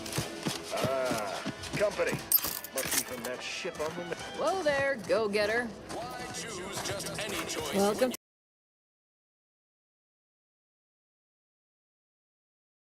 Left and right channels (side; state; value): both; identical; correlation 1.00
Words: Company. Must be from that ship on the... Whoa there, go-getter. Why choose just any choice? Welcome.